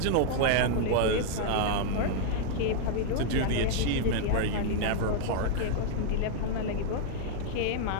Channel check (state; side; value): different; both; correlation 0.00